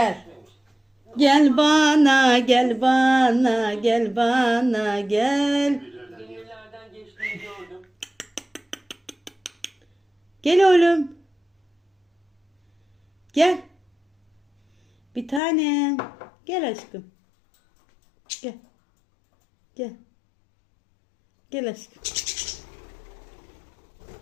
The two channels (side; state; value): right; drops out; at 15.4 s